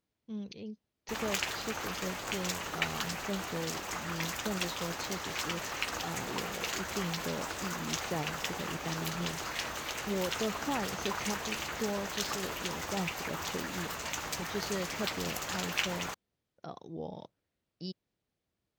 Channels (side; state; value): both; identical; correlation 1.00